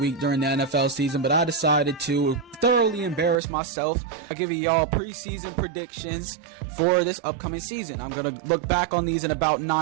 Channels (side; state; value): left; drops out; at 3.4 s